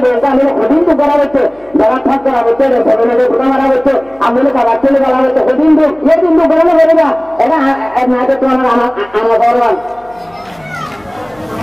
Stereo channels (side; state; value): left; noise; hum, 29 dB below the sound